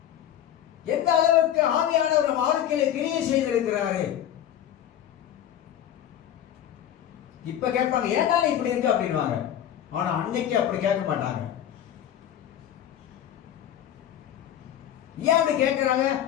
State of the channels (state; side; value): quieter; right; 10.7 dB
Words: எந்த அளவுக்கு ஆவியானவர் வாழ்க்கையில கிரியை செய்திருக்கிறாரு. இப்ப கேட்பாங்க, ஏன்டா இப்படி இருக்கு அப்படின்வாங்க. ஆனா அன்னைக்கு அப்படி கேட்க மாட்டாங்க. ஏன் அப்படி கேட்கிறாங்க?